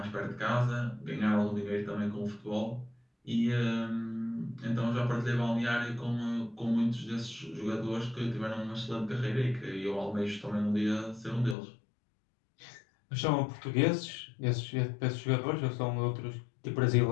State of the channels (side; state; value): right; drops out; at 11.6 s